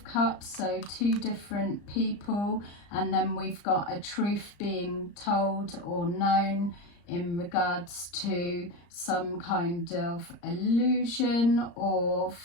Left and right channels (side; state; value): right; late; 35 ms